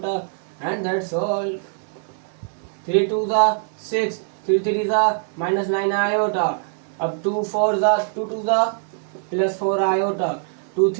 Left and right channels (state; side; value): silent; left; 64 dB below the other